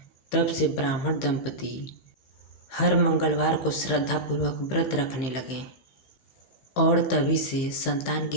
तब से ब्राह्मण दंपति हर मंगलवार को श्रद्धापूर्वक व्रत रखने लगे और तभी से संतान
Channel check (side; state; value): right; late; 15 ms